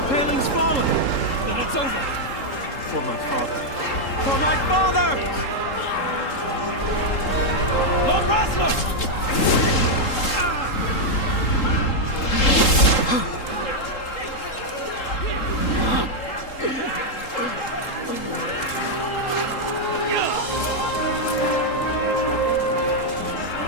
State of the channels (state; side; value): late; right; 3.7 ms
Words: paling's fallen! Then it's over! For my father. For my father! Lord Rasler!